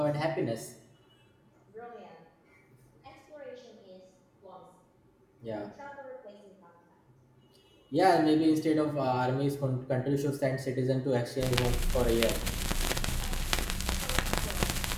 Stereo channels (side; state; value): both; identical; correlation 1.00